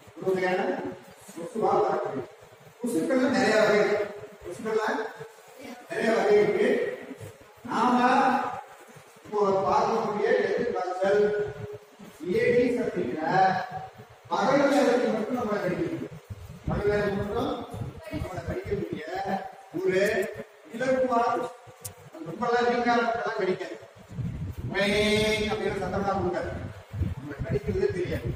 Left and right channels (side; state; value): both; identical; correlation 1.00